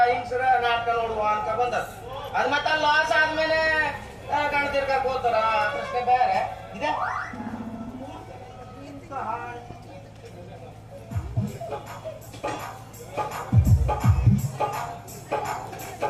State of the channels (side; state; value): both; identical; correlation 1.00